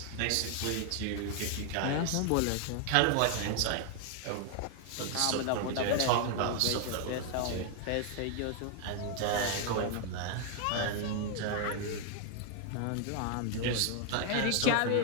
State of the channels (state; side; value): different; both; correlation 0.00